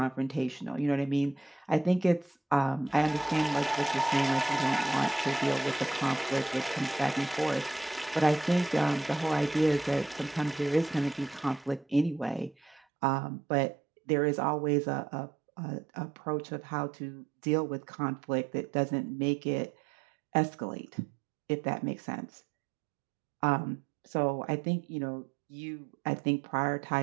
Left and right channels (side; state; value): left; drops out; at 12.8 s